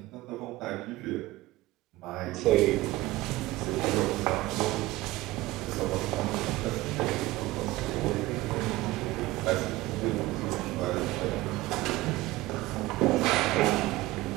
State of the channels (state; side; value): quieter; left; 18.3 dB